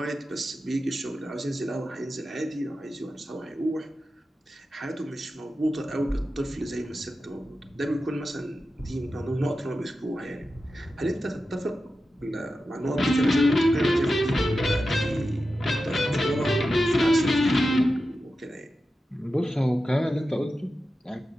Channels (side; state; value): both; normal; correlation 0.91